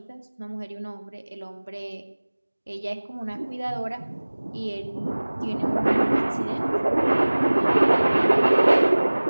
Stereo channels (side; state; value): both; inverted; correlation -1.00